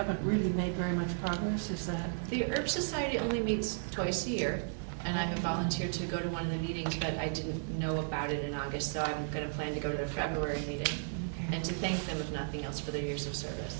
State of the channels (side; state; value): left; silent; digital silence